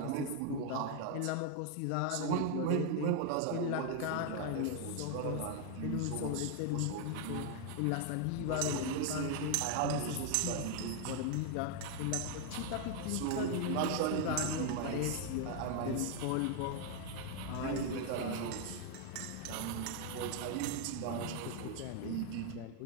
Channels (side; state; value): both; different; correlation 0.00